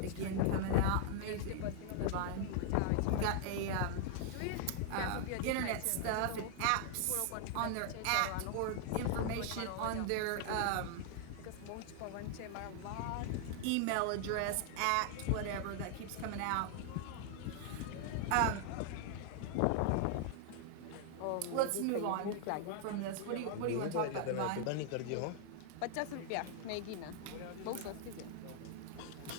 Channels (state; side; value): different; both; correlation 0.00